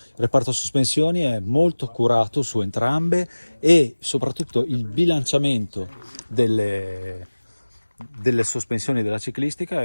reparto sospensioni è molto curato su entrambe e soprattutto il bilanciamento delle sospensioni della ciclistica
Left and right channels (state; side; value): inverted; both; correlation -1.00